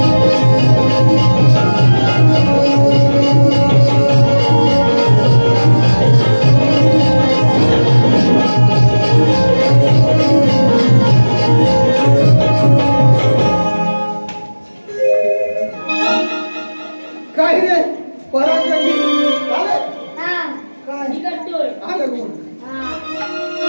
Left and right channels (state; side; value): inverted; both; correlation -1.00